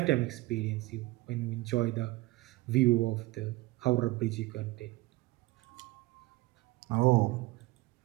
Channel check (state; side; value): quieter; left; 20.6 dB